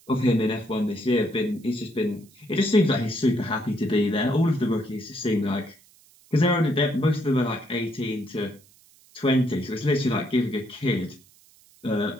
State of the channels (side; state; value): right; noise; hiss, 28 dB below the sound